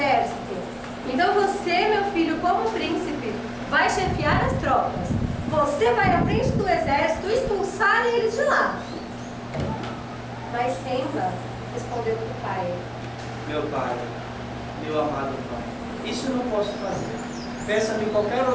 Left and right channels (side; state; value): both; identical; correlation 1.00